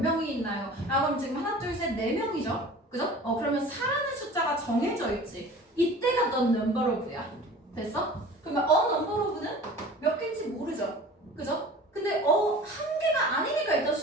있나요? 그럼 지금 하나, 둘, 셋, 네 명이죠? 그죠? 그러면 사라는 숫자가 정해져 있지. 이때가 the number of야. 됐어? 그러면 number of는 몇 개인지 모르죠? 그죠? 근데 한 개가 아니니까 일단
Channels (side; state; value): both; normal; correlation 0.42